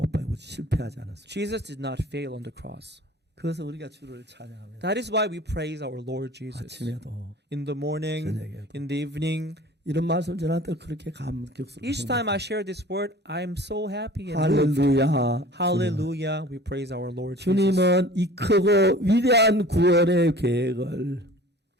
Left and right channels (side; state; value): both; normal; correlation 0.45